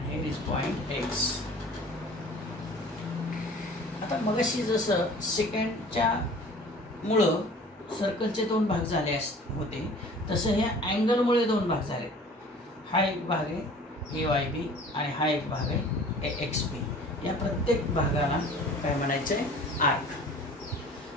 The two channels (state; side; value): normal; both; correlation 0.46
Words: here is point X. आता मगाशी जसं सेकंडच्या मुळं सर्कलचे 2 भाग झाले होते तसं ह्या अँगलमुळे 2 भाग झाले. हा एक भाग आहे AYB आणि हा एक भाग आहे AXB. या प्रत्येक भागाला काय म्हणायचं आहे, आर्क.